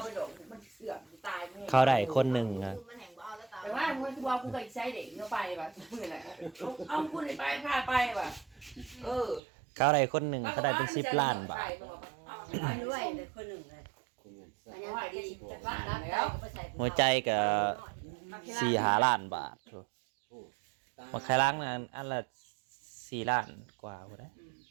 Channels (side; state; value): left; drops out; at 9.4 s